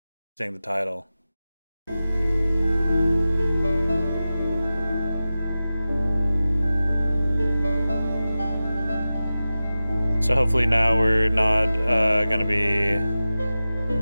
seeing the title. So hopefully now we're not gonna be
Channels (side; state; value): both; inverted; correlation -0.95